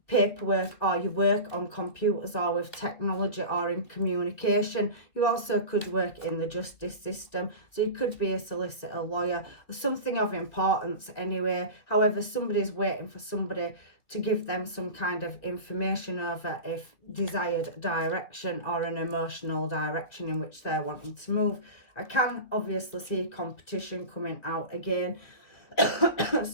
paperwork, or you work on computers or with technology or in communication. You also could work in the justice system, so you could be a solicitor, lawyer, or something of importance anyway. However, somebody's waiting for somebody to give them some kind of information over a desired direction or an emotional direction in which they're wanting to move. I can obviously see competition coming out again,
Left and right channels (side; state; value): right; late; 3.0 ms